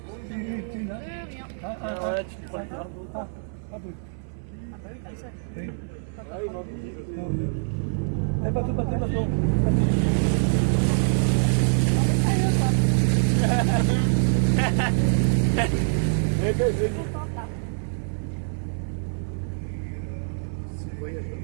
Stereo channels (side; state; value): left; silent; 59 dB below the other